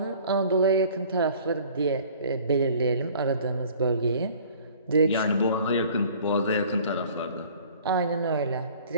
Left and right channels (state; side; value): inverted; both; correlation -0.50